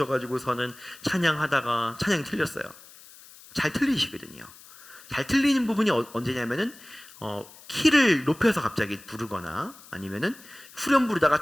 찬양하다가 찬양이 틀렸어요. 잘 틀리시거든요. 잘 틀리는 부분이 언제냐면은 키를 높여서 갑자기 부르거나 아니면은 후렴 부르다가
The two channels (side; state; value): left; noise; hiss, 21 dB below the sound